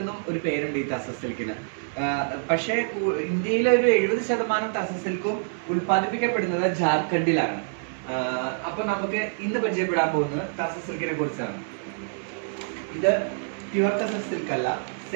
എന്നും ഒരു പേരുണ്ട് ഈ തസർ സിൽക്കിന്. പക്ഷേ ഇന്ത്യയിലെ ഒരു 70% തസർ സിൽക്കും ഉൽപ്പാദിപ്പിക്കപ്പെടുന്നത് ജാർഖണ്ഡിലാണ്. അപ്പൊ നമുക്ക് ഇന്ന് പരിചയപ്പെടാൻ പോകുന്നത് തസർ സിൽക്കിനെ കുറിച്ചാണ്. ഇത് പ്യുവർ തസർ സിൽക്ക് അല്ല,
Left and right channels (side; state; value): left; silent; 60 dB below the other